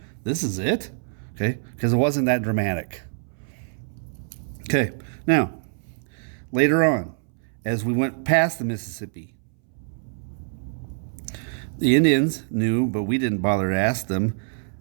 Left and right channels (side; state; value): left; silent; 62 dB below the other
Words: This is it? Okay? Because it wasn't that dramatic. Okay, now, later on, as we went past the Mississippi, the Indians knew, but we didn't bother to ask them.